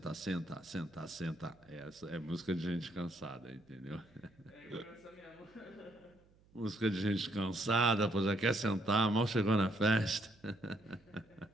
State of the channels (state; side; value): noise; right; hum, 30 dB below the sound